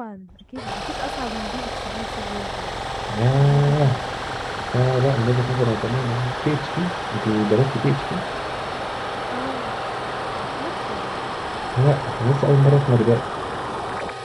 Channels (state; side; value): identical; both; correlation 1.00